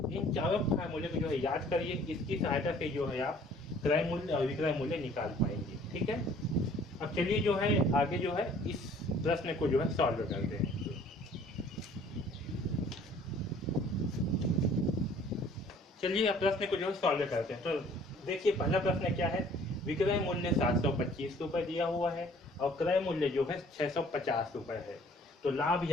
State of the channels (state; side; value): normal; both; correlation 0.55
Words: इन चारों फार्मूले को जो है याद करिए। इसकी सहायता से जो है आप क्रय मूल्य और विक्रय मूल्य निकाल पाएंगे, ठीक है। अब चलिए जो है आगे जो है इस प्रश्न को जो है सॉल्व करते हैं। चलिए अब प्रश्न को जो है सॉल्व करते हैं। तो देखिए पहला प्रश्न क्या है, विक्रय मूल्य 725 रुपये दिया हुआ है और क्रय मूल्य जो है 650 रुपये है। तो लाभ